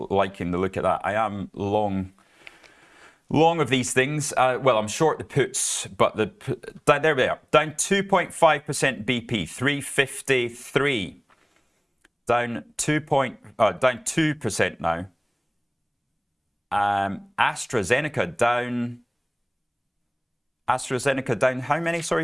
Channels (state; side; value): identical; both; correlation 1.00